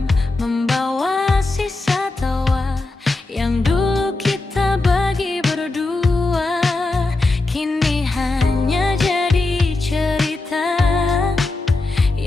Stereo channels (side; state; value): right; quieter; 3.2 dB